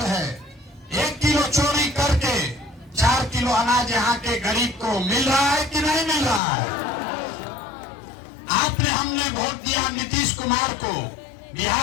है, 1 किलो चोरी करके 4 किलो अनाज यहाँ के गरीब को मिल रहा है कि नहीं मिल रहा है? आपने, हमने वोट दिया नीतीश कुमार को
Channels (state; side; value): drops out; right; at 6.4 s